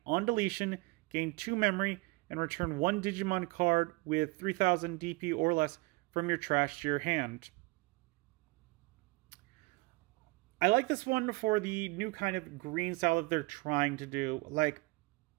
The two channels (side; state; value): left; quieter; 24.3 dB